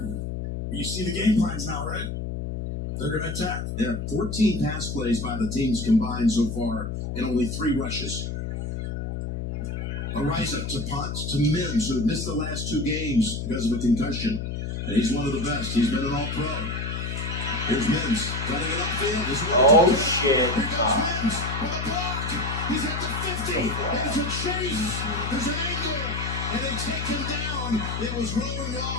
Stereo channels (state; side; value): noise; left; hum, 4 dB below the sound